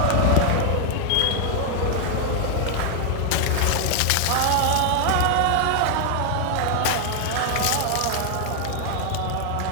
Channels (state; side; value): different; both; correlation 0.00